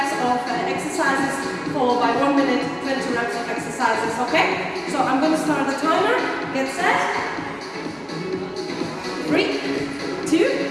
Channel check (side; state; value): both; identical; correlation 1.00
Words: of exercises, followed by 1 minute, 20 reps of exercises. Okay? So I'm going to start the timer. Get set. 3, 2,